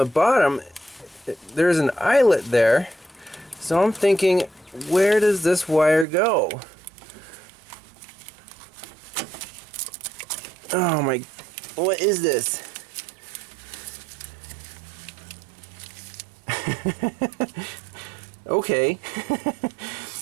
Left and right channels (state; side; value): drops out; left; at 6.1 s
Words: bottom, there's an eyelet there. So I'm thinking, where does this wire go? Oh my, what is this? Okay.